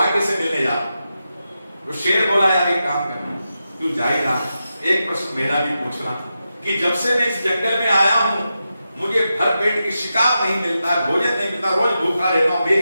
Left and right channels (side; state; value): both; inverted; correlation -0.89